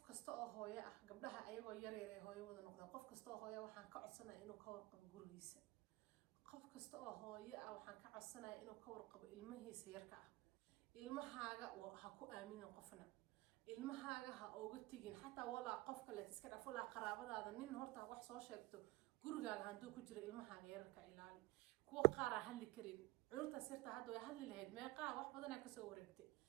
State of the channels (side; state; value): left; quieter; 20.1 dB